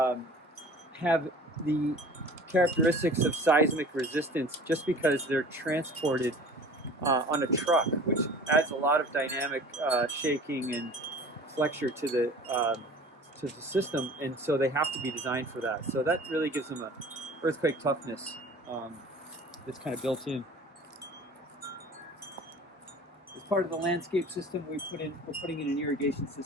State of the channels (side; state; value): both; normal; correlation 0.44